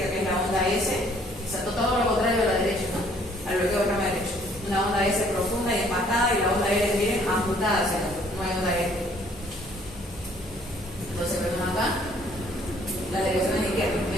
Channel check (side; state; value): both; normal; correlation 0.61